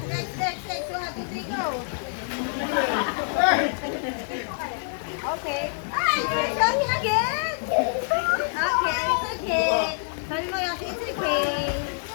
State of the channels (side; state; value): right; silent; digital silence